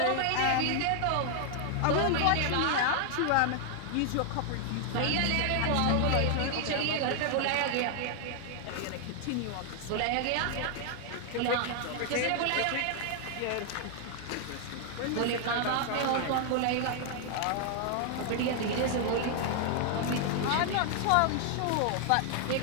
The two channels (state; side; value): different; both; correlation 0.00